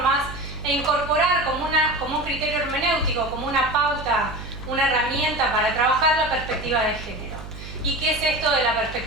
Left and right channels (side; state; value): right; noise; hum, 12 dB below the sound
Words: e incorporar como un criterio hermenéutico, como una pauta, una herramienta para trabajar la perspectiva de género. ¿Y qué es esto de la